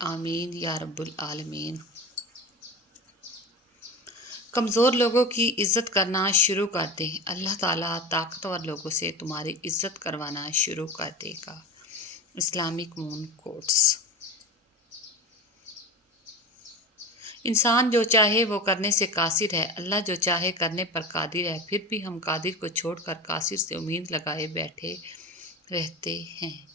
یا رب العالمین۔ کمزور لوگوں کی عزت کرنا شروع کر دیں، اللہ تعالیٰ طاقتور لوگوں سے تمہاری عزت کروانا شروع کر دے گا۔ اسلامک مون کوٹس۔ انسان جو چاہے وہ کرنے سے قاصر ہے، اللہ جو چاہے کرنے پر قادر ہے۔ پھر بھی ہم قادر کو چھوڑ کر قاصر سے امید لگائے بیٹھے رہتے ہیں۔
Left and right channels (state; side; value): normal; both; correlation 0.28